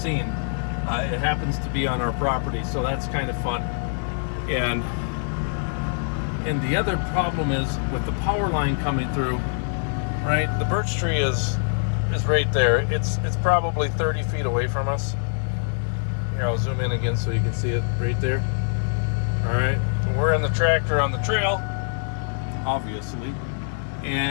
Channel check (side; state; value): right; silent; digital silence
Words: It happens to be on our property, so that's kind of fun. And the other problem is with the power line coming through, right? The birch tree is right there. It's probably 30 feet away from us. Here, I'll zoom in again so you can see it right there. All right, we're in the tractor on the trail, obviously,